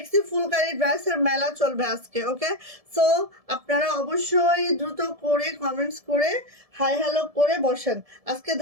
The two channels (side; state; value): left; late; 1.7 ms